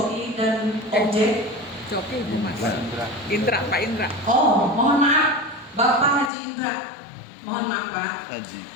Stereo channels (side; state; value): right; drops out; at 6.3 s